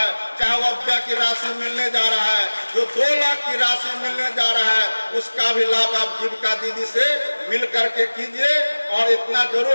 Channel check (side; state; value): both; inverted; correlation -1.00